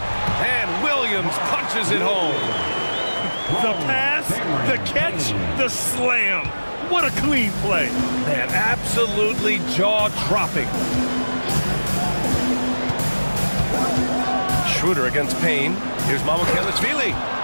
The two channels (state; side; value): inverted; both; correlation -1.00